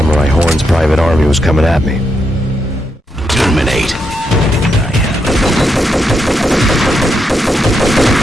Horn's private army was coming at me. Terminate.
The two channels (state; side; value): normal; both; correlation 0.82